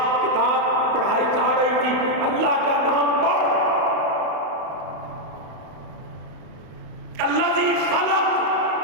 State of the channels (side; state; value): left; late; 32 ms